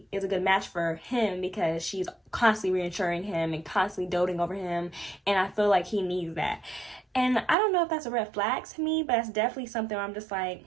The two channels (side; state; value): left; drops out; at 7.6 s